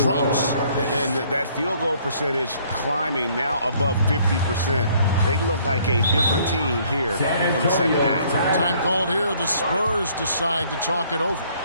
And that field goal percentage climbing now above 50%. They look like a different team here in the second half. Time called here. The Spurs decide to talk it over.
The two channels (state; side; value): inverted; both; correlation -0.62